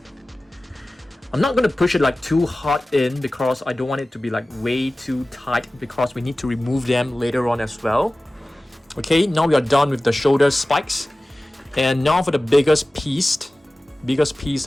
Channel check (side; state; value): both; normal; correlation 0.97